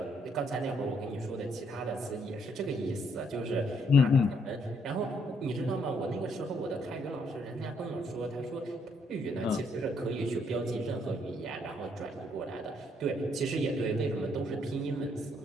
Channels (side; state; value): both; normal; correlation 0.71